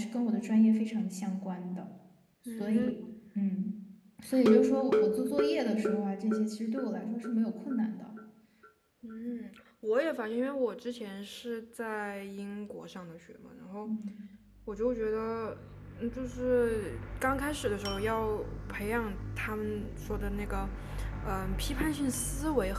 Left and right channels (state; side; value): identical; both; correlation 1.00